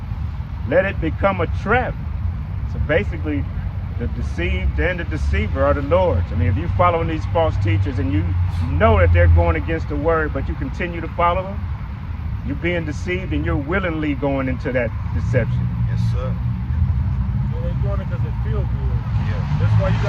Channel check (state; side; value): identical; both; correlation 1.00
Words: let it become a trap. So basically, the deceived and the deceiver are the Lord's. I mean, if you're following these false teachers and you know that they're going against the word, but you continue to follow them, you're being deceived and you're willingly going into that deception. Yes, sir. Yeah, they're doing it because it feels good. Yeah. That's why you